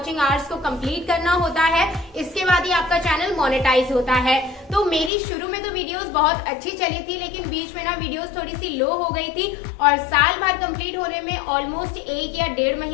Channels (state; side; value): drops out; right; at 5.1 s